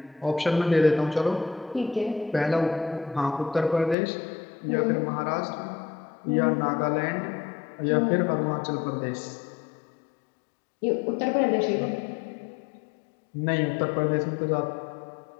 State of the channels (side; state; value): right; drops out; at 4.0 s